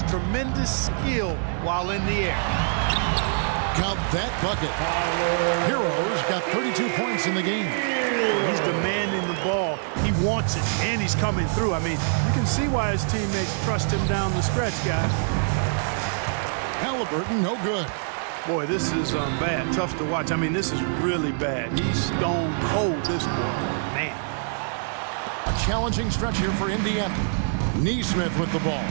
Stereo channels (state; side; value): silent; left; digital silence